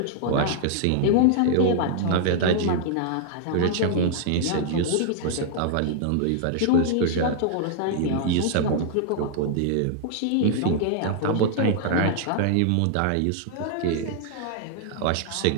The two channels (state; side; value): different; both; correlation -0.01